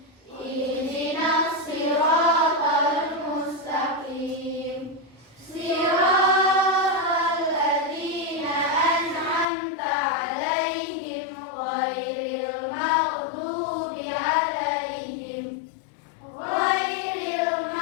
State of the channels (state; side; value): drops out; right; at 9.5 s